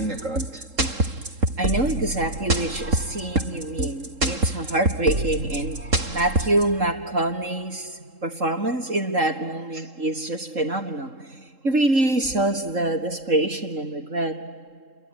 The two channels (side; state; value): left; late; 3.7 ms